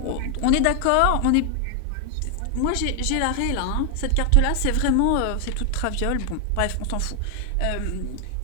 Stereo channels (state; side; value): different; both; correlation 0.00